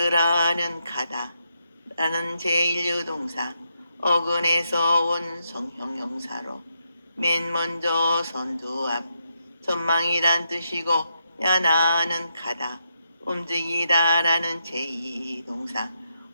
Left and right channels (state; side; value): inverted; both; correlation -0.81